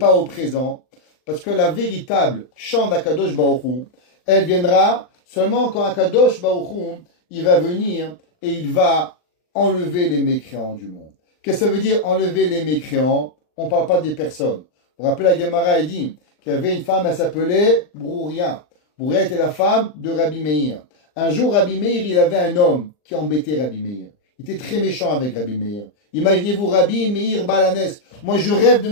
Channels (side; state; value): right; late; 39 ms